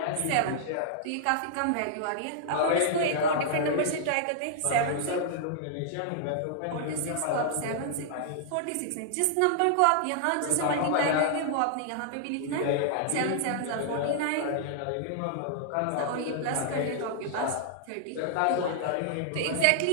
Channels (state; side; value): different; both; correlation -0.01